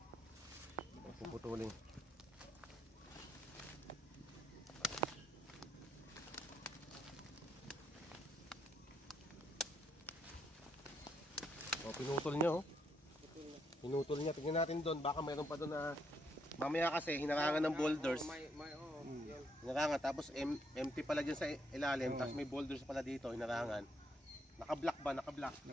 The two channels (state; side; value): normal; both; correlation 0.74